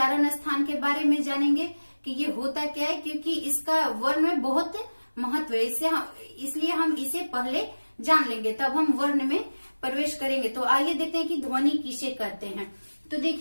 स्थान के बारे में जानेंगे कि ये होता क्या है, क्योंकि इसका वर्ण में बहुत महत्व है। इसलिए हम इसे पहले जान लेंगे, तब हम वर्ण में प्रवेश करेंगे। तो आइए देखते हैं कि ध्वनि किसे कहते हैं। तो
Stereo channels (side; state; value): both; inverted; correlation -1.00